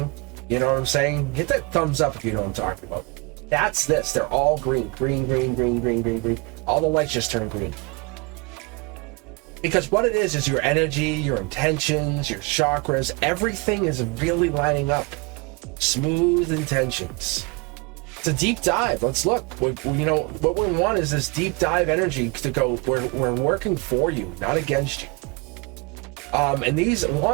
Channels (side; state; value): left; quieter; 28.2 dB